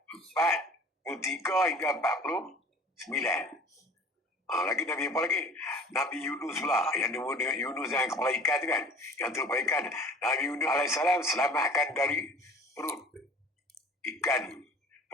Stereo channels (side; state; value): both; normal; correlation 0.46